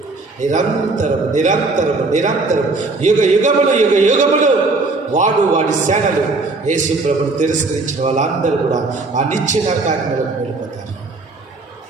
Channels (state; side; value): quieter; left; 3.5 dB